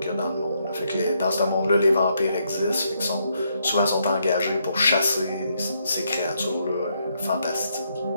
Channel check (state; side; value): inverted; both; correlation -0.76